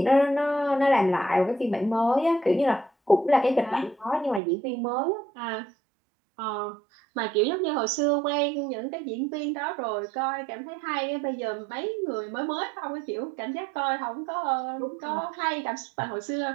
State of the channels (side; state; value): left; drops out; at 4.4 s